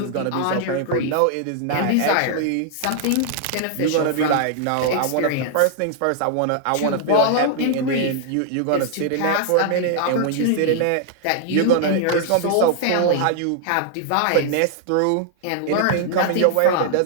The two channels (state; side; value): different; both; correlation -0.01